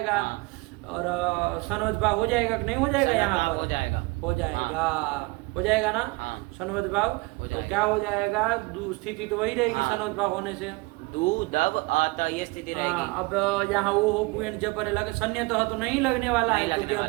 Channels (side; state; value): left; quieter; 25.4 dB